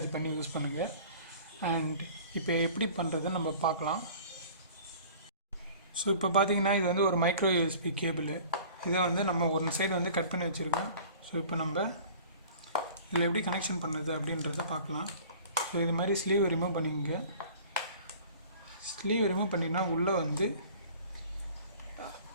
பண்ணி யூஸ் பண்ணுங்கள். அண்ட் இப்போ எப்படி பண்ணுறதுன்னு நம்ம பார்க்கலாம். ஸோ இப்போ பார்த்தீங்கன்னா இது வந்து ஒரு மைக்ரோ யூஎஸ்பி கேபிள். இதை வந்து நம்ம ஒரு சைடு வந்து கட் பண்ணி வச்சுருக்கோம். ஸோ இப்போ நம்ம இதில் எப்படி கனெக்ஷன் பண்ணுறது அப்படின்றத பார்க்கலாம். ஸோ இது மாதிரி ஸ்லீவ் ரிமூவ் பண்ணிங்க. ஸ்லீவ் ரிமூவ் பண்ணிங்கன்னா உள்ளே வந்து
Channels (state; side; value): inverted; both; correlation -0.46